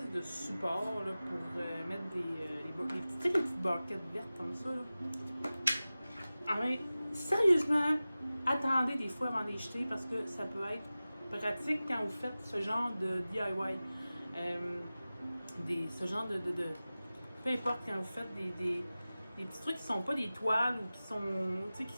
de support là, pour mettre les petites barquettes vertes comme ça. Là. Ah, mais sérieusement, attendez des fois avant de les jeter parce que ça peut être pratique quand vous faites ce genre de DIY. Ce genre de peu importe quand vous faites des petits trucs qui sont pas des toiles ou qui sont, tu sais, qui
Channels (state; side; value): inverted; both; correlation -0.96